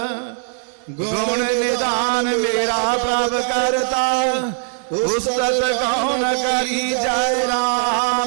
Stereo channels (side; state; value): left; silent; 66 dB below the other